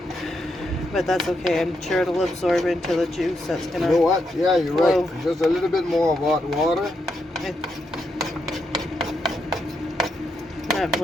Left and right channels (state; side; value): normal; both; correlation 0.82